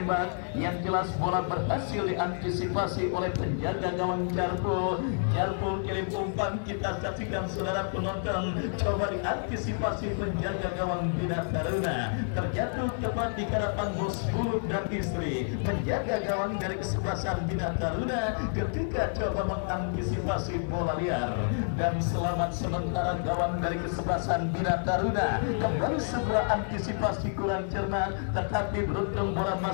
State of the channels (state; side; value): silent; right; digital silence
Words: yang jelas bola berhasil diantisipasi oleh penjaga gawang Jarpul kirim umpan, kita saksikan saudara penonton, coba diantisipasi penjaga gawang Bina Taruna, terjatuh tepat di hadapan bos Bulut dan istri, penjaga gawang dari kesebelasan Bina Taruna ketika coba mengantisipasi bola liar. Dan selamat sementara gawang dari kesebelasan Bina Taruna. Kembali sebuah antisipasi kurang cermat, tetapi beruntung bola